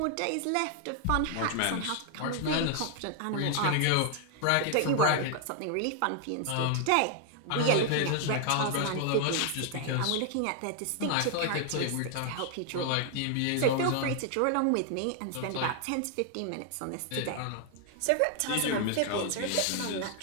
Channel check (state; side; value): different; both; correlation 0.00